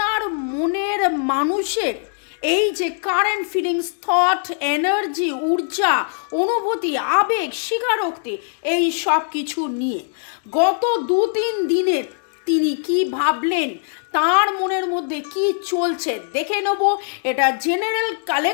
মনের মানুষের এই যে কারেন্ট ফিলিংস, থট, এনার্জি, ঊর্জা, অনুভূতি, আবেগ, স্বীকারোক্তি, এই সব কিছু নিয়ে গত 2-3 দিনের তিনি কি ভাবলেন, তার মনের মধ্যে কি চলছে দেখে নেব। এটা জেনারেল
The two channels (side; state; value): right; silent; digital silence